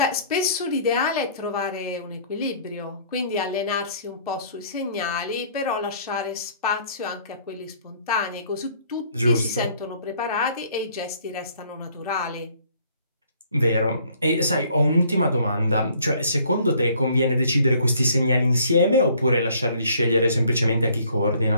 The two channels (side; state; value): both; inverted; correlation -0.59